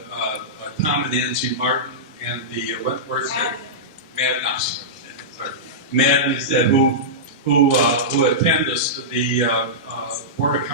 Tom and Nancy Martin and the Madden said who attend the Board of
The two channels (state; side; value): normal; both; correlation -0.14